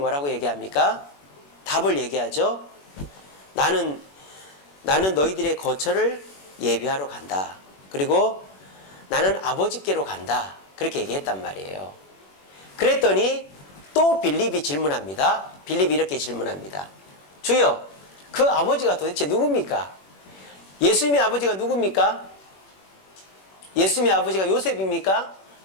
얘기합니까? 답을 얘기하죠. 나는 너희들의 거처를 예비하러 간다. 그리고 나는 아버지께로 간다. 그렇게 얘기했단 말이에요. 그랬더니 또 빌립이 질문합니다. 빌립이 이렇게 질문합니다. 주여, 그 아버지가 도대체 누굽니까? 예수님의 아버지가 누굽니까? 예수님의 아버지가 요셉입니까?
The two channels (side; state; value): right; late; 21 ms